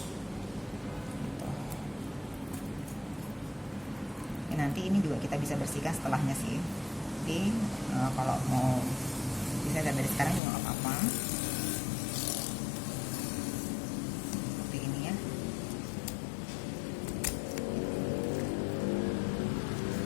Gitu. Nanti ini juga kita bisa bersihkan setelahnya sih. Jadi kalau mau bisa dari sekarang juga nggak apa-apa. Seperti ini ya.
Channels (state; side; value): drops out; right; at 10.4 s